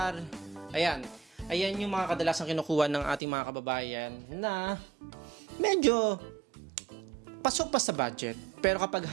Ayan. Ayan yung mga kadalasang kinukuha ng ating mga kababayan na medyo pasok pa sa budget. Pero kapag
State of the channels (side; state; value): left; drops out; at 3.2 s